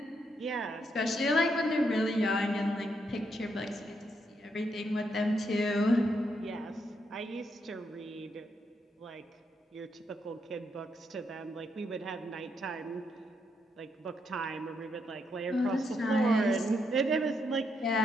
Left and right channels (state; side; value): normal; both; correlation 0.78